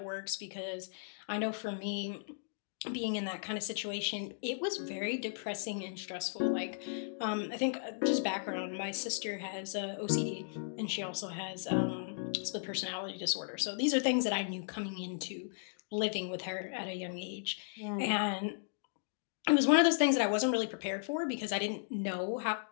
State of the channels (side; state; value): right; silent; digital silence